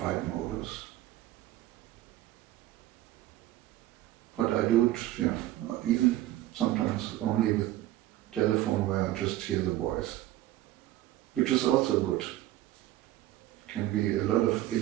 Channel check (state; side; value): quieter; left; 15.0 dB